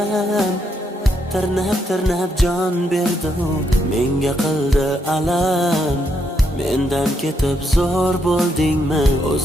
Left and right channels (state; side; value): normal; both; correlation 0.78